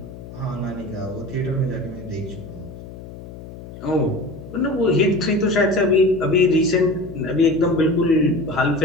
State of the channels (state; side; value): noise; left; hum, 14 dB below the sound